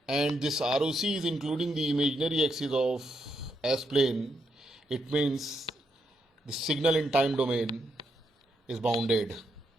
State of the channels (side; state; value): both; normal; correlation 0.80